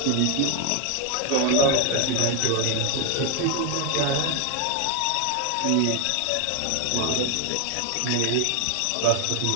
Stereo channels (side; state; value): both; different; correlation 0.01